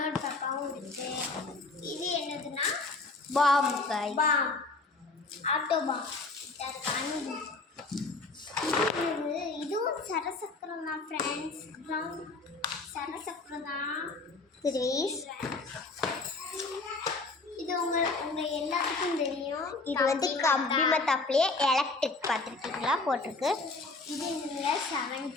டப்பாவும் இருக்கு. இது என்னதுன்னா பாம்பு பாம், ஆட்டோ பாம். இதுவும் சரசக்கரம் தான் ஃப்ரெண்ட்ஸ். சரசக்கரம் தான். இது உங்க எல்லாத்துக்கும் தெரியும். இது வந்து கம்பி மத்தாப்புலேயே எலக்ட்ரிக் பார்த்துருக்கீங்களா போட்டிருக்கு. இது இல்லை 7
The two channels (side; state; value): right; quieter; 3.6 dB